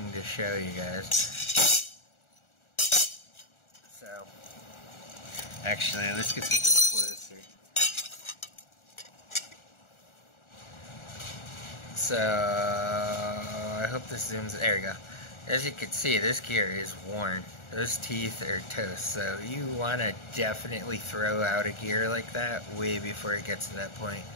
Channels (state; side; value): late; right; 1.4 ms